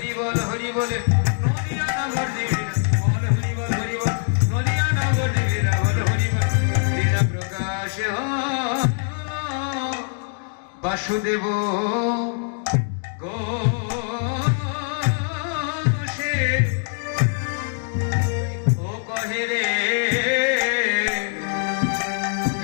বল হরি বলে, নদিয়া নগর দেবী লীলা বল হরি বল হরি বল, নদিয়া নগর দেবী লীলা বল হরি বল, লীলা প্রকাশ হল বাসুদেব ঘোষে ও কহে রে,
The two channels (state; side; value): silent; right; digital silence